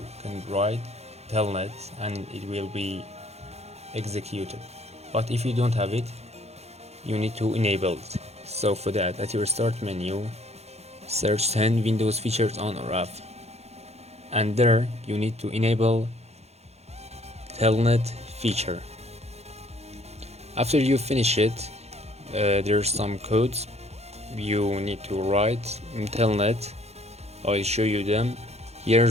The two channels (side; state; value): left; late; 0.31 ms